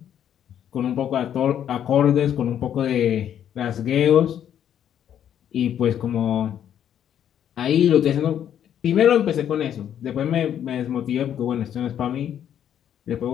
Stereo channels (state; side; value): quieter; right; 9.8 dB